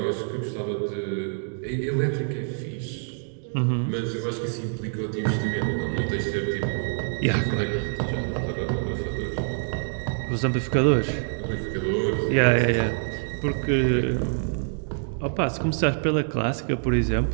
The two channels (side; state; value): left; silent; digital silence